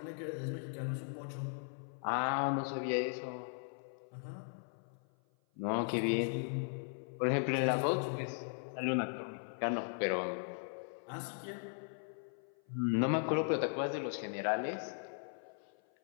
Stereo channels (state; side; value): silent; right; 52 dB below the other